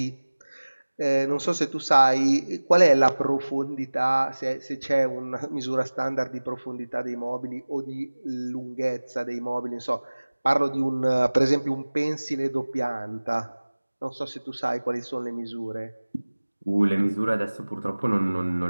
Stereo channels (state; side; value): inverted; both; correlation -1.00